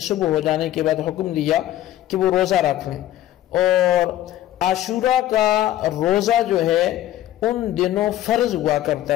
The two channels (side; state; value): right; quieter; 13.2 dB